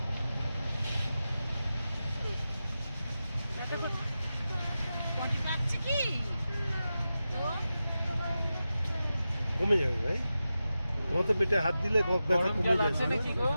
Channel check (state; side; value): inverted; both; correlation -0.92